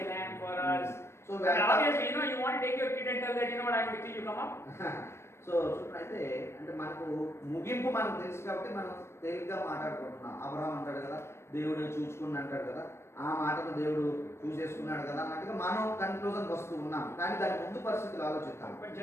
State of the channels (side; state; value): right; late; 0.13 ms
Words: a lamb for us. So and obviously, you know, you want to take your kid and tell that, you know what, I'm with you, you come up. So చూడండి, అంటే మనకు ముగింపు మనకు తెలుసు కాబట్టి మనం తేలిగ్గా మాట్లాడుకుంటున్నాం. అబ్రహాం అంటాడు కదా, దేవుడు చూసుకుని అంటాడు కదా, ఆ మాటను దేవుడు చూసేసుకున్నాడు కదా అన్నట్టుగా మనం కన్క్లూజన్కి వస్తూ ఉన్నాం. కానీ దాని ముందు పరిస్థితులు ఆలోచిస్తాం. But